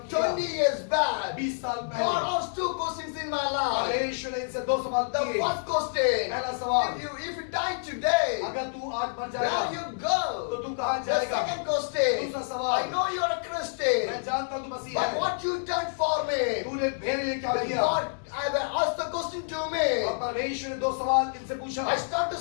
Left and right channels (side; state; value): right; silent; digital silence